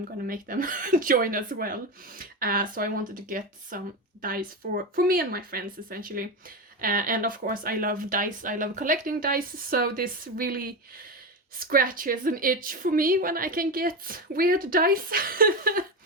gonna make them join as well. So I wanted to get some dice for me and my friends, essentially. And of course, I love dice, I love collecting dice, so this really scratches an itch for me when I can get weird dice.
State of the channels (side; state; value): both; normal; correlation 0.17